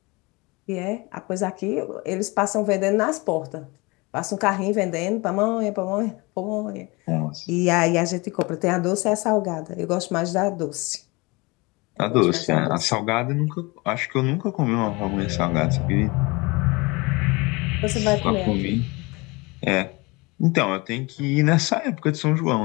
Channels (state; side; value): quieter; right; 25.4 dB